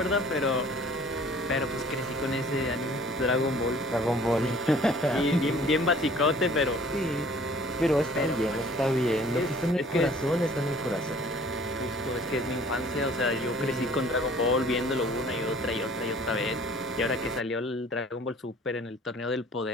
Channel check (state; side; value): normal; both; correlation 0.52